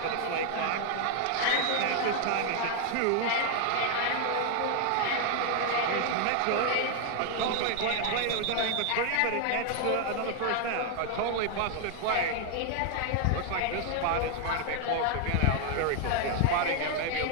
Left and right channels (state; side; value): different; both; correlation 0.00